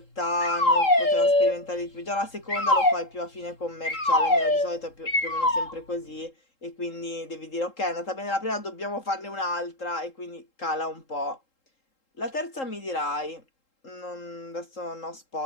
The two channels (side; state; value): right; late; 3.8 ms